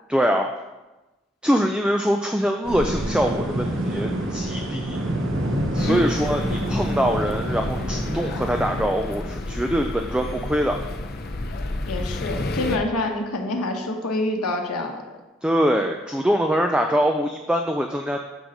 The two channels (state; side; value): normal; both; correlation 0.77